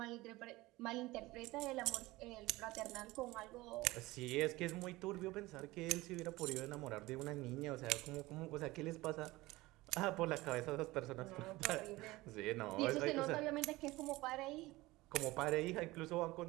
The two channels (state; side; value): quieter; left; 19.8 dB